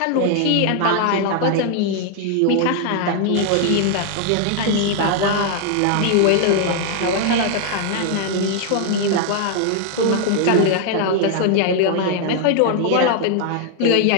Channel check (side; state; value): both; different; correlation 0.00